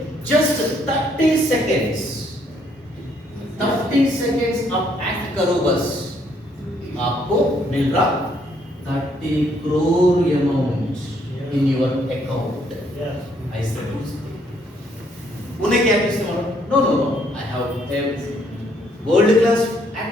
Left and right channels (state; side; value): normal; both; correlation 0.69